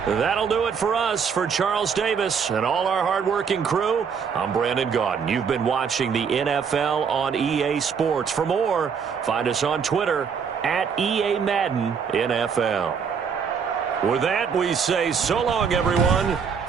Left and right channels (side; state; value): left; quieter; 6.5 dB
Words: That'll do it for us. For Charles Davis and all our hardworking crew, I'm Brandon Gaudin. You've been watching the NFL on EA Sports. For more, find us on Twitter at EA Madden NFL. With that, we say so long, everyone,